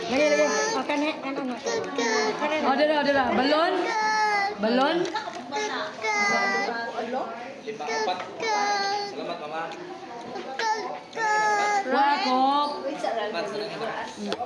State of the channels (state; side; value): identical; both; correlation 1.00